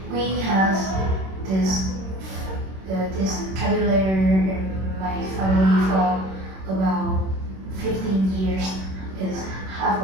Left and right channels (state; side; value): late; left; 26 ms